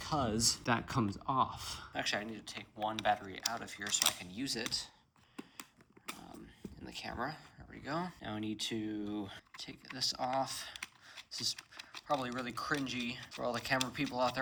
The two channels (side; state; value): both; identical; correlation 1.00